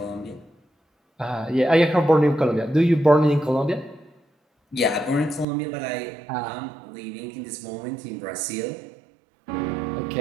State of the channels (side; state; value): left; drops out; at 5.5 s